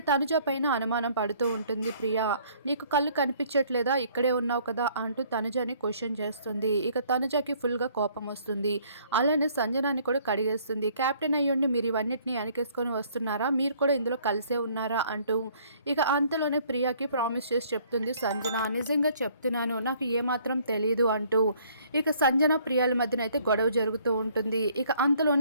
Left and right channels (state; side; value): inverted; both; correlation -0.60